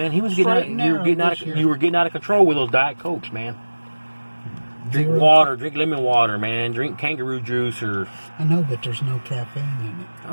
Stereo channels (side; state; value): both; inverted; correlation -1.00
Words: He was getting Straight and out, you were getting out of control with those Diet Cokes, man. Drink water, drink lemon water, man. Drink kangaroo juice or. I know, but there's no caffeine in it.